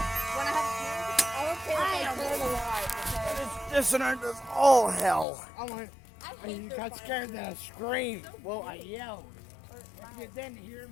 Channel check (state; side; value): drops out; right; at 5.2 s